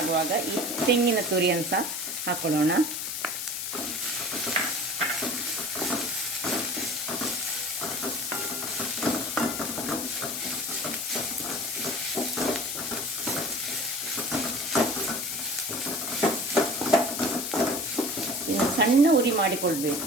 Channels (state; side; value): noise; left; hiss, 3 dB below the sound